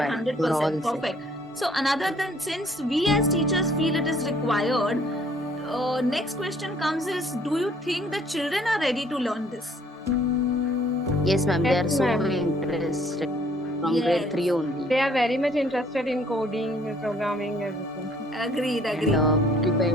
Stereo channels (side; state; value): both; normal; correlation 0.60